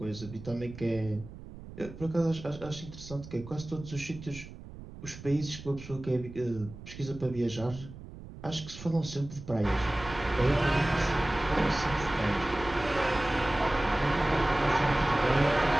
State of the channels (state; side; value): noise; right; rumble, 14 dB below the sound